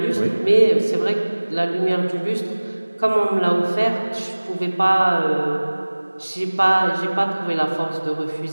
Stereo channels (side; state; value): both; inverted; correlation -1.00